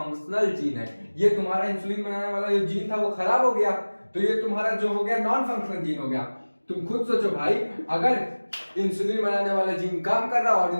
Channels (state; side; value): inverted; both; correlation -1.00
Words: जीन है, ये तुम्हारा इंसुलिन बनाने वाला जो जीन था वो खराब हो गया, तो ये तुम्हारा जो हो गया नॉन फंक्शनल जीन हो गया। तुम खुद सोचो भाई, अगर इंसुलिन बनाने वाला जीन काम कर रहा है और